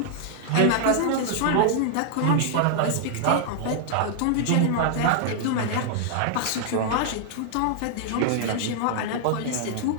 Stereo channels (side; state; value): both; different; correlation -0.01